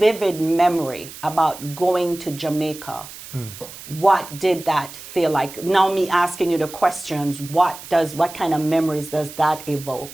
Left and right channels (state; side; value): noise; right; hiss, 15 dB below the sound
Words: memory about going to Jamaica. What did that feel like? Now me asking you the questions, what kind of memories does that